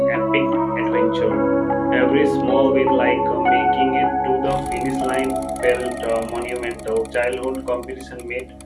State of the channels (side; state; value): both; identical; correlation 1.00